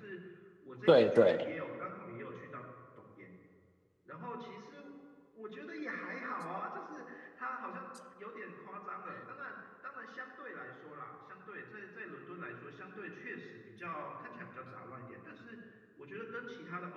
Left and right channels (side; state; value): both; identical; correlation 1.00